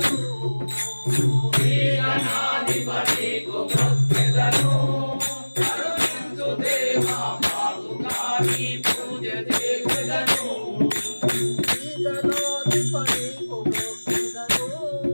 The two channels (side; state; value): both; inverted; correlation -1.00